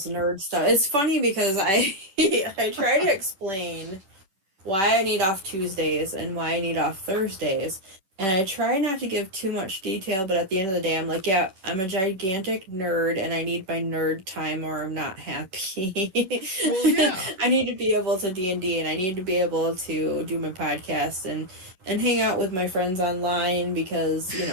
nerd stuff. It's funny because I I try to explain why I need off Tuesdays and why I need off Thursdays. And I try not to give too much detail, but at the end of the day, I'm like, yeah, I'm a gigantic nerd and I need my nerd time or I'm not happy. Well, yeah. I need to be able to D&D, and I need to be able to do my podcast and hang out with my friends online, because, you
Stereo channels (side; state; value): left; late; 10 ms